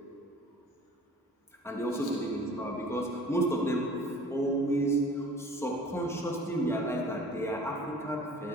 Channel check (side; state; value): both; normal; correlation 0.47